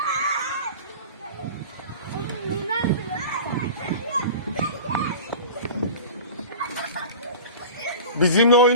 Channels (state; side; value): inverted; both; correlation -0.37